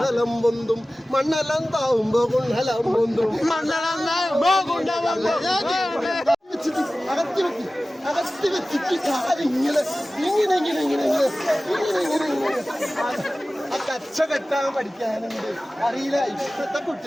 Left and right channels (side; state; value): both; normal; correlation 0.97